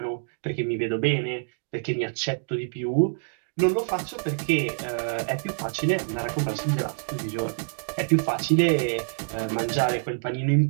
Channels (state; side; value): silent; left; digital silence